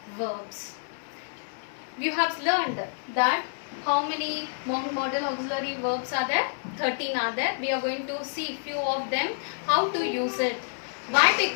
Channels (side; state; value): right; silent; 59 dB below the other